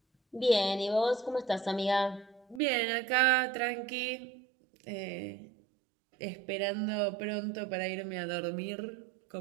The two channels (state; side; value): drops out; left; at 2.6 s